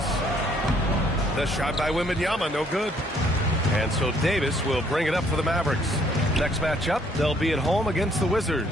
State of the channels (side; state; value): both; normal; correlation 0.65